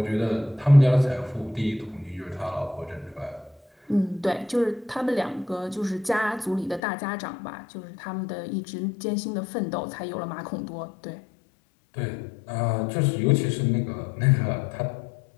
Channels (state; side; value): drops out; right; at 6.8 s